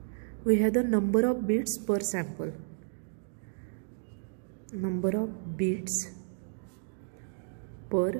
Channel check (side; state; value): left; silent; digital silence